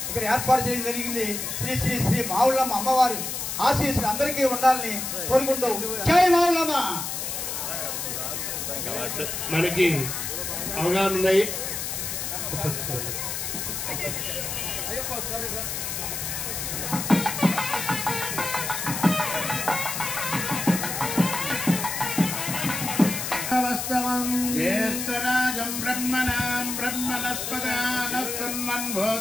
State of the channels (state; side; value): noise; left; hiss, 4 dB below the sound